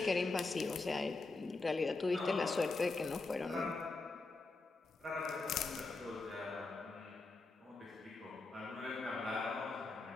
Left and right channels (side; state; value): right; quieter; 3.6 dB